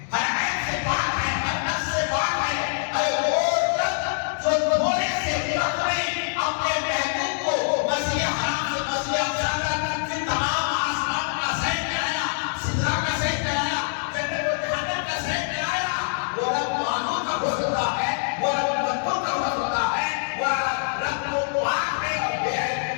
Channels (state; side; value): silent; right; digital silence